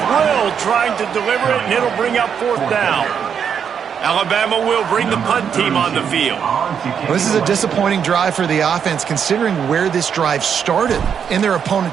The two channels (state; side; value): quieter; left; 7.5 dB